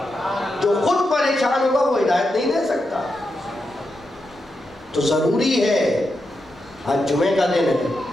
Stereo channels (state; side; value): normal; both; correlation 0.86